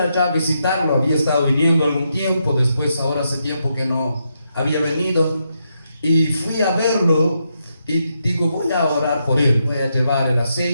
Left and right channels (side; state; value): both; inverted; correlation -0.82